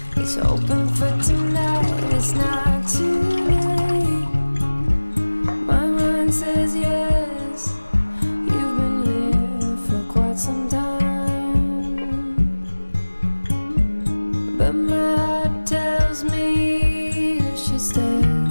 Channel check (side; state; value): both; inverted; correlation -1.00